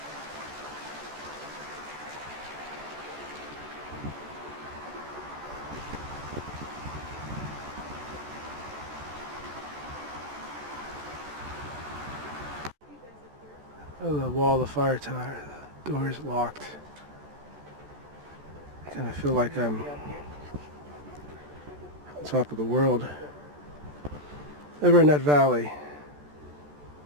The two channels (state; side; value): late; left; 14 ms